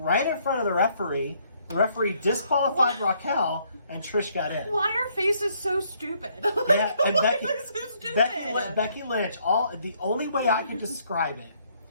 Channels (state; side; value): inverted; both; correlation -0.68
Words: in front of the referee. The referee disqualified Raquel, and Trish got in. Why are faces so stupid? Yeah, and Becky, so stupid? Becky Lynch, the only way I can describe it,